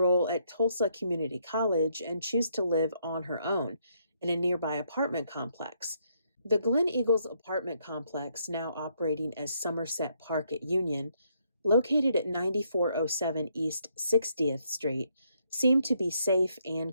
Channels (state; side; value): inverted; both; correlation -0.73